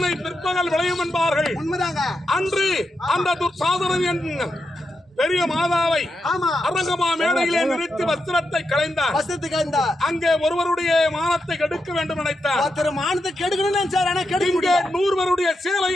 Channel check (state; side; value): normal; both; correlation 0.86